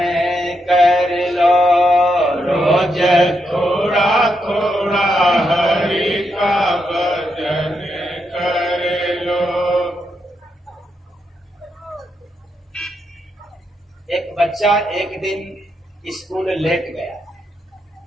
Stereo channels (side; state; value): both; normal; correlation 0.82